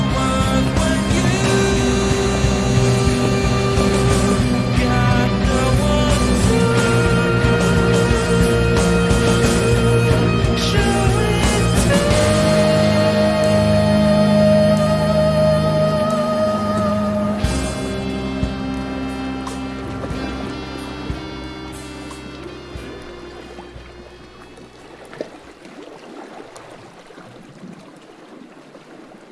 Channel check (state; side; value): identical; both; correlation 1.00